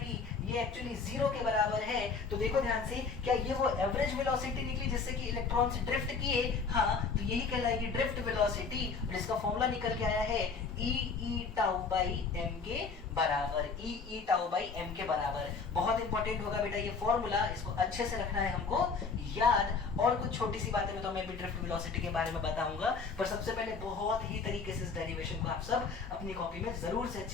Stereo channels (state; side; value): quieter; right; 4.9 dB